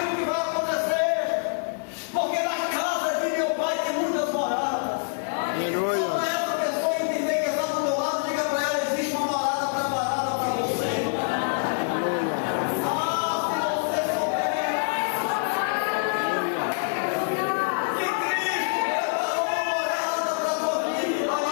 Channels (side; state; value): right; silent; digital silence